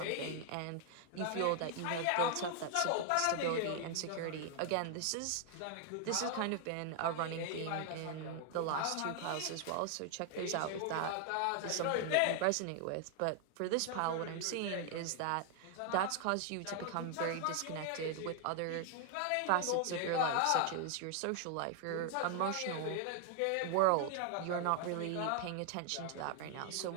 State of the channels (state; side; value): different; both; correlation 0.00